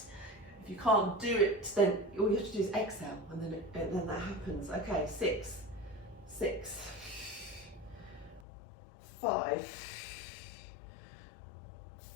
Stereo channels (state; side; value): drops out; right; at 8.4 s